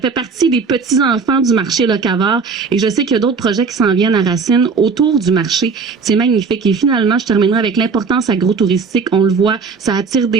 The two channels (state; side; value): quieter; left; 5.0 dB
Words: partie des petits-enfants du marché Locavor. Et je sais qu'il y a d'autres projets qui s'en viennent à Racine autour du marché. C'est magnifique. Et finalement, je terminerai avec l'importance agro-touristique. On le voit, ça attire